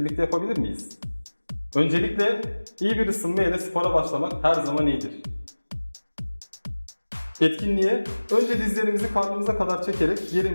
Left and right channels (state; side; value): inverted; both; correlation -1.00